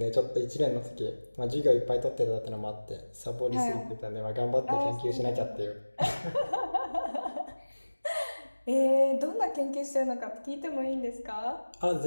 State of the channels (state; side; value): inverted; both; correlation -1.00